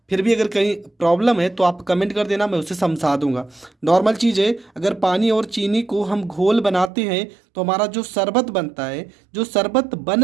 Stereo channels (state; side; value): drops out; left; at 6.9 s